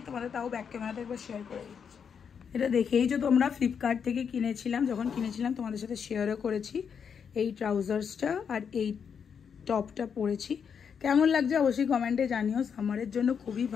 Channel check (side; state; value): right; quieter; 7.0 dB